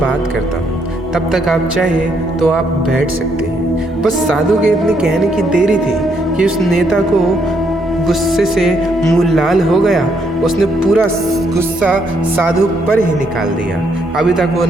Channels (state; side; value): normal; both; correlation 0.73